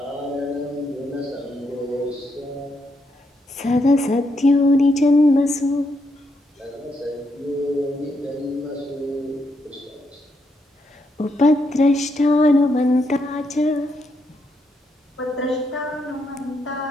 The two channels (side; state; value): both; normal; correlation 0.78